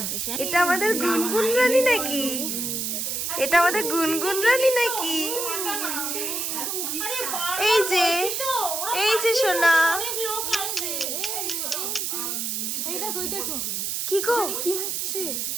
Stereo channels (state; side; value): noise; right; hiss, 2 dB below the sound